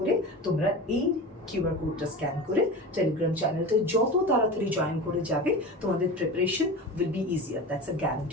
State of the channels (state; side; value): normal; both; correlation 0.31